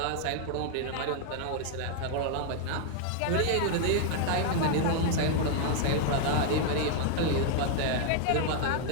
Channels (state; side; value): different; both; correlation 0.00